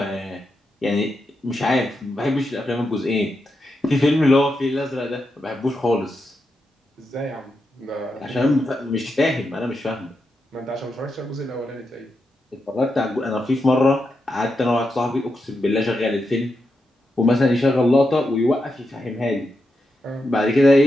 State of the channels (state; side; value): normal; both; correlation 0.86